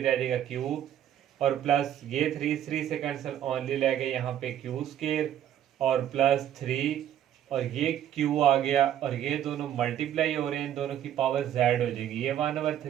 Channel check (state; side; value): quieter; left; 10.9 dB